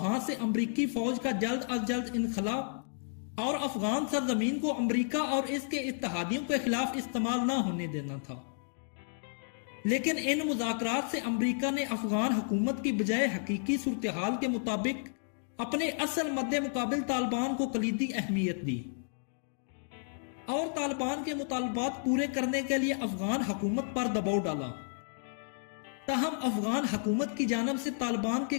से अमेरिकी फौज का जल्द अज जल्द इनखला और अफगान सरजमीन को अमेरिका और इसके इत्तेहादियों के खिलाफ इस्तेमाल न होने देना था। लेकिन इन मुज़ाकरात से अमेरिका ने अफगान हुकूमत की बजाय हकीकी सूरत हाल के मुताबिक अपने असल मद्दे मुकाबिल तालिबान को कलीदी अहमियत दी और तालिबान के मुतालबात पूरे करने के लिए अफगान हुकूमत पर दबाव डाला। ताहम अफगान हुकूमत की जानब से तालिबान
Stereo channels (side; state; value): right; silent; digital silence